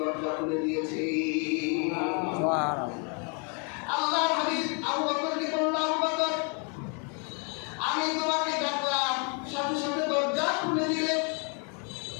খুলে দিয়েছে। আল্লাহ হাবিব আবু বকরকে বলল, আবু বকর আমি তোমাকে ডাকলাম, সাথে সাথে দরজা খুলে দিলে,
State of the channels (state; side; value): quieter; right; 37.1 dB